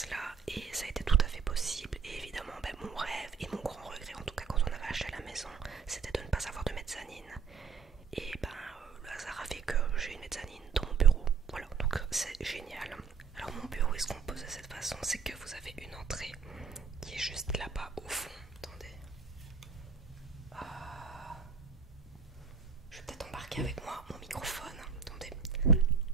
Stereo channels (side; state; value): left; quieter; 5.7 dB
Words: là, et ça a été tout à fait possible. Et évidemment mon rêve et mon grand regret en tout cas quand on avait acheté la maison, c'était de ne pas avoir de mezzanine. Et le hasard a fait que j'ai une mezzanine dans mon bureau. Voilà, donc c'est génial. Alors mon bureau est se compose de cette façon, c'est que vous avez une entrée qui est juste là-bas au fond. Attendez. Je vais peut-être embarquer avec moi mon microphone. Attendez.